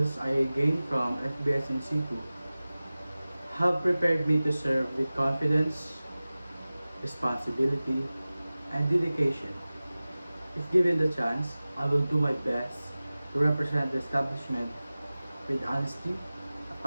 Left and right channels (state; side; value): inverted; both; correlation -0.97